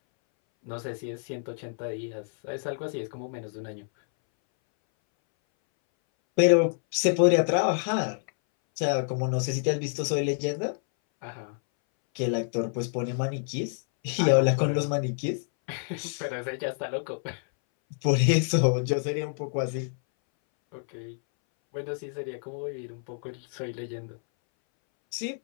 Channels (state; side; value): silent; right; 59 dB below the other